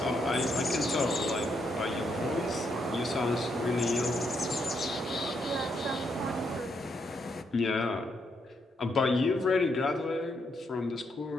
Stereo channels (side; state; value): both; normal; correlation 0.77